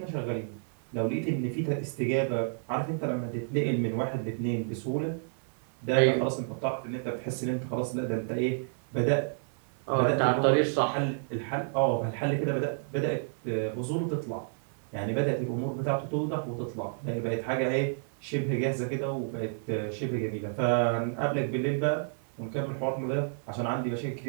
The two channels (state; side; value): silent; left; 58 dB below the other